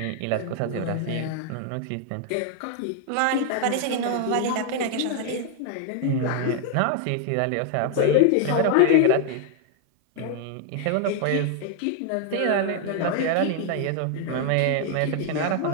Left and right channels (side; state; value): both; different; correlation 0.00